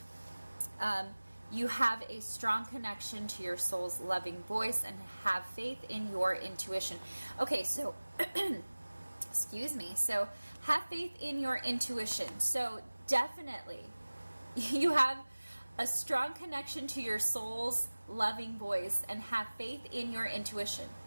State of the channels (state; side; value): inverted; both; correlation -1.00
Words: you have a strong connection to your soul's loving voice and have faith in your intuition. Okay, so, excuse me. So, have faith in your intuition. So, definitely, you have a strong connection to your soul's loving voice and have faith in your intuition.